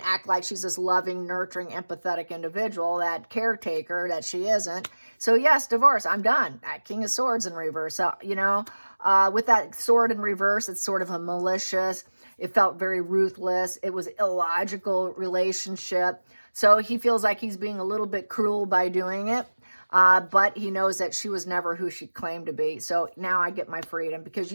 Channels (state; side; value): inverted; both; correlation -1.00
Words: act like she's this loving, nurturing, empathetic individual, that caretaker that she isn't. So yes, divorce. I'm done. That King of Swords in reverse. So, you know, with that sword in reverse, it's sort of a malicious. It felt very ruthless. It was illogical relationship. So he feels like he's being a little bit cruel by doing it. But he knows that she was never who she claimed to be. So now I get my freedom, because